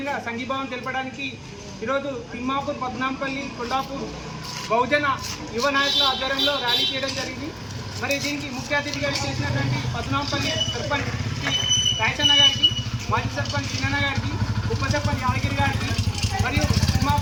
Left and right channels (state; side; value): identical; both; correlation 1.00